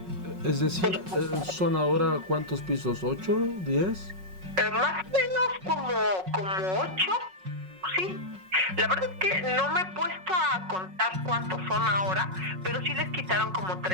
Es decir, ¿son ahora cuántos pisos? ¿8? ¿10? Más o menos como 8, sí. La verdad es que no me he puesto a contar cuántos son ahora, pero sí les quitaron como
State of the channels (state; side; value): late; left; 5.4 ms